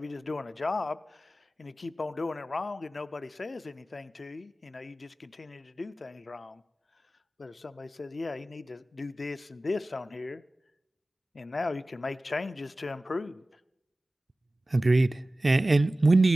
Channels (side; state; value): both; normal; correlation 0.96